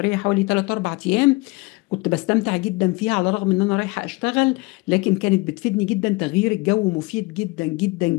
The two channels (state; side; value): quieter; right; 24.7 dB